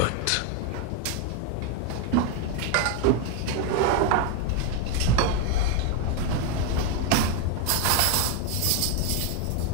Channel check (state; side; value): different; both; correlation 0.01